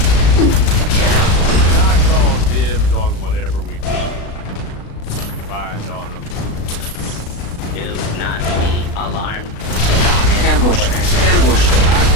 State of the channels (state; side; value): late; right; 36 ms